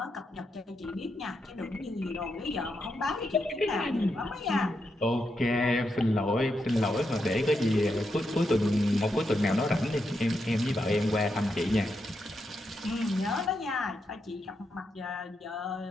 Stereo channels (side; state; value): both; normal; correlation 0.83